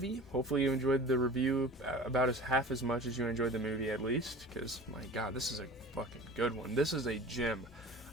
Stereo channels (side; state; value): both; normal; correlation 0.39